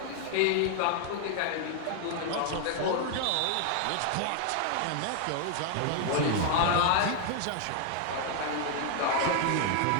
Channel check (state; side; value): different; both; correlation 0.00